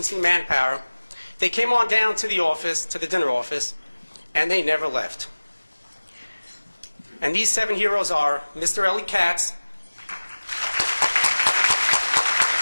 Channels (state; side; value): inverted; both; correlation -1.00